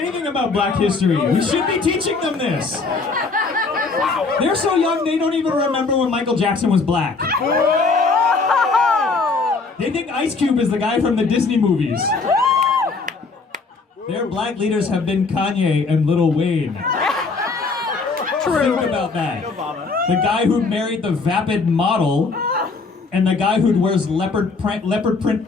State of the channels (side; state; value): right; quieter; 4.2 dB